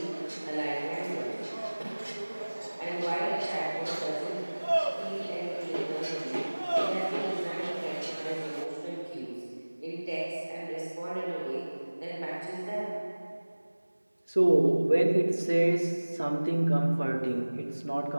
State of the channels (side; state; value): both; inverted; correlation -1.00